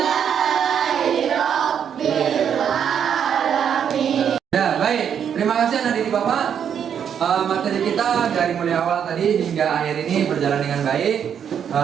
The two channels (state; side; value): quieter; left; 8.3 dB